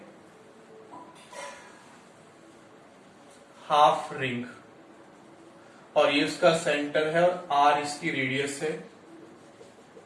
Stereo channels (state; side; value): identical; both; correlation 1.00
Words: हाफ रिंग, और ये इसका सेंटर है और आर इसकी रेडियस है,